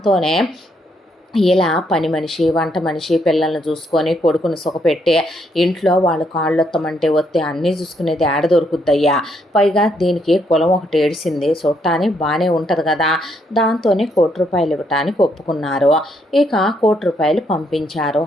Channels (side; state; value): both; normal; correlation 0.74